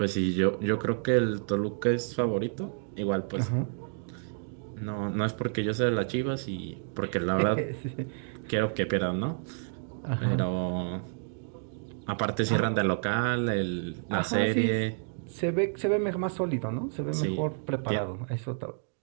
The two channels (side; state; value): left; silent; 58 dB below the other